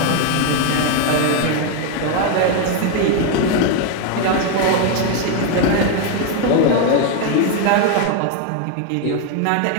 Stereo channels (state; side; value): different; both; correlation 0.01